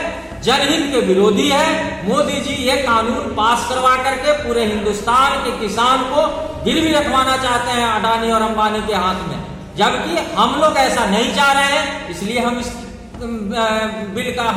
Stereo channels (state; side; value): identical; both; correlation 1.00